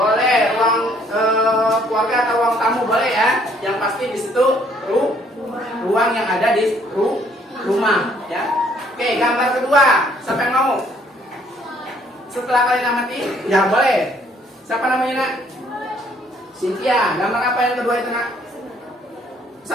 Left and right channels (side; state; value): both; normal; correlation 0.64